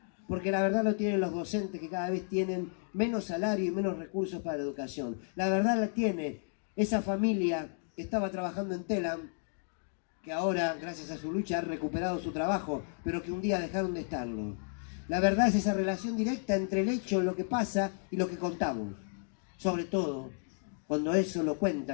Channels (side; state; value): right; silent; 56 dB below the other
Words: Porque la verdad lo tienen los docentes que cada vez tienen menos salario y menos recursos para la educación. La verdad la tiene esa familia que estaba trabajando en Telam, que ahora, gracias a su lucha, ha recuperado su trabajo, pero que un día dejaron de estarlo. La verdad es esa relación directa entre el hecho, lo que pasa y lo que contamos. Sobre todo, cuando eso lo